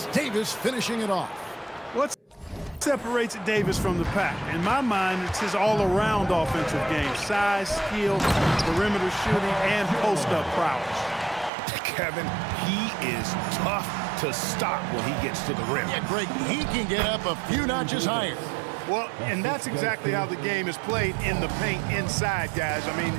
Davis finishing it off. What separates Davis from the pack? In my mind, it's his all-around offensive game. Size, skill, perimeter shooting, and post-up prowess. Kevin, he is tough to stop when he gets to the rim. Yeah, Greg, he can get up a few notches higher. Well, and that's exactly how the game is played in the paint inside, guys. I mean,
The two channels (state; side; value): drops out; left; at 11.5 s